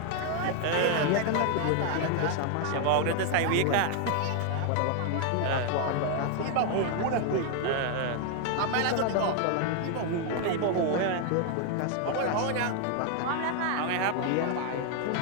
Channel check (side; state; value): both; different; correlation 0.00